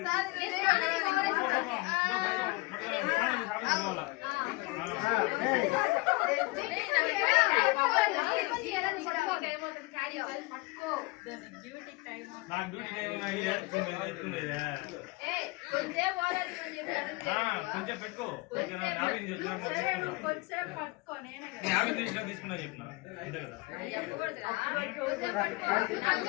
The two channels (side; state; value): right; quieter; 24.1 dB